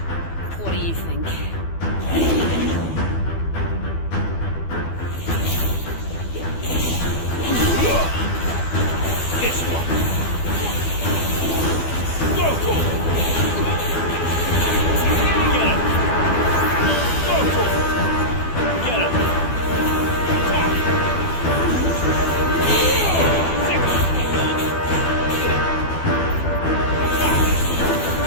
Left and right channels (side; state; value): right; late; 12 ms